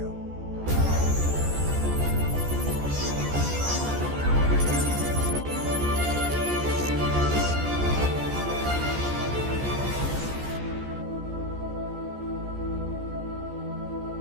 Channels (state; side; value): late; left; 14 ms